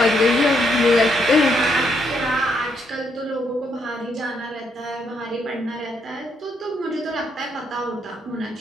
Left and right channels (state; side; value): normal; both; correlation 0.75